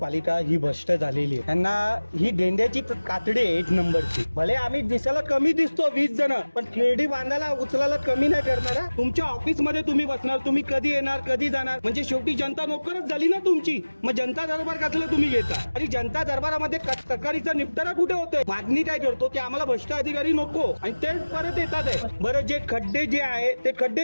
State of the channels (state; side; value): inverted; both; correlation -1.00